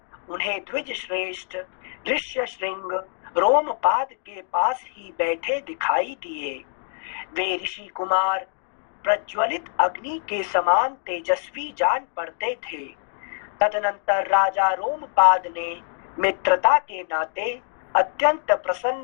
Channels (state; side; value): silent; right; digital silence